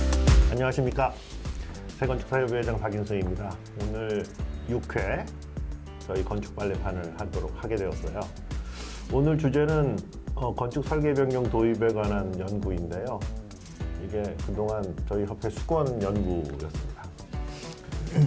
안녕하십니까. 새건축사협의회장 박인성입니다. 오늘 6회 저희 건축 빨래판을 하도록 하게 되었어요. 오늘 주제는 건축 설계 변경 도입에 관한 연구인데요. 이게 그동안 저희 협회 수건 연구였습니다.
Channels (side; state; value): both; identical; correlation 1.00